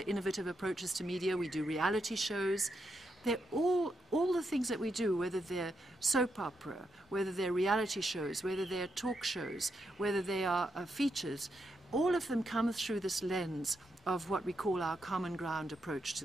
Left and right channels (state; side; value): normal; both; correlation 0.82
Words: innovative approaches to media. We do reality shows. They're all the things that we do, whether they're soap opera, whether they're reality shows, whether they're talk shows, whether they are features, all of them come through this lens of what we call our common ground approach